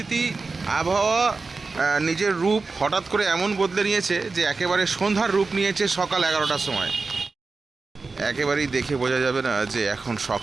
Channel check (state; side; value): quieter; left; 4.1 dB